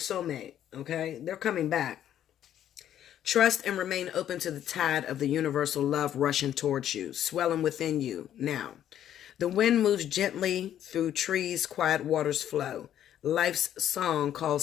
okay? They're coming back. Trust and remain open to the tide of the universal love rushing towards you, swelling within you now. The wind moves gently through trees, quiet waters flow. Life's song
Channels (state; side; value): quieter; right; 10.9 dB